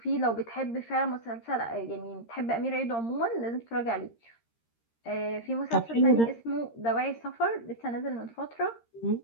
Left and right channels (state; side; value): late; right; 13 ms